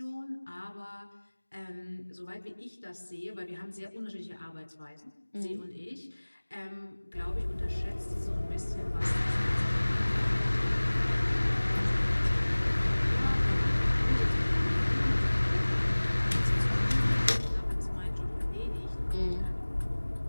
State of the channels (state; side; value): inverted; both; correlation -1.00